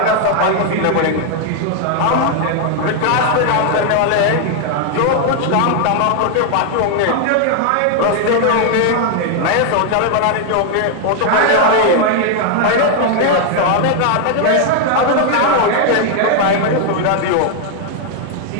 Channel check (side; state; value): both; different; correlation 0.00